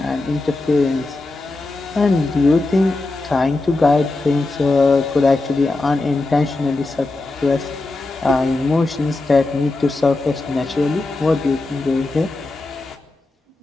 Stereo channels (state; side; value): quieter; right; 3.1 dB